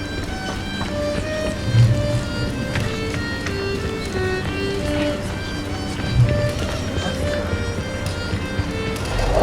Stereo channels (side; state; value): both; identical; correlation 1.00